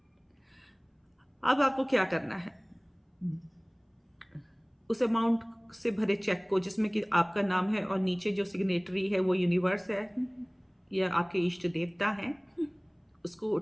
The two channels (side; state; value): both; identical; correlation 1.00